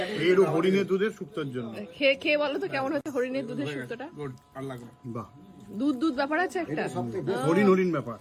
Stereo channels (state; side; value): identical; both; correlation 1.00